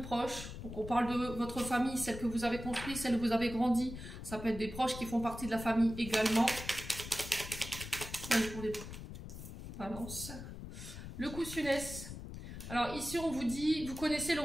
Donc on parle de votre famille, celle que vous avez construite, celle où vous avez grandi. Ça peut être des proches qui font partie de la famille également. Allez, pour les balance. Le coussiness. Alors ici on vous dit, vous connaissez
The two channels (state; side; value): noise; left; rumble, 10 dB below the sound